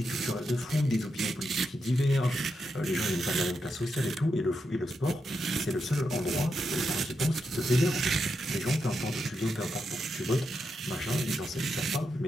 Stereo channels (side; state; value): both; normal; correlation 0.85